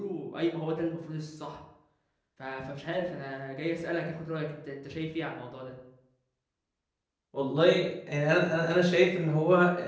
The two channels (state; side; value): identical; both; correlation 1.00